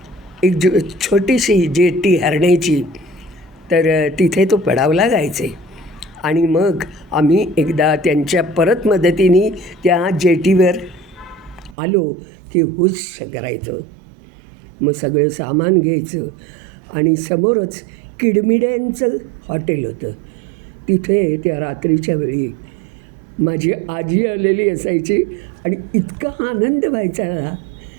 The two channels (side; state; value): left; drops out; at 11.8 s